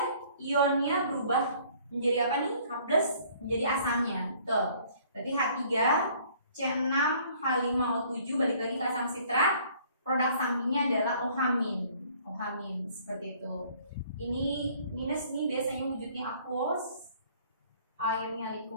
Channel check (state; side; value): inverted; both; correlation -0.57